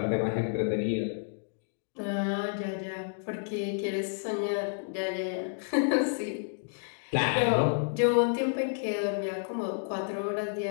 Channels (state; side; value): silent; right; digital silence